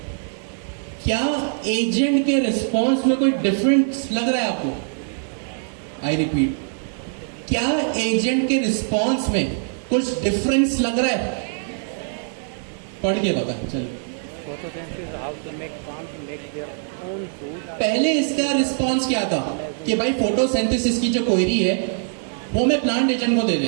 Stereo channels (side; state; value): left; silent; digital silence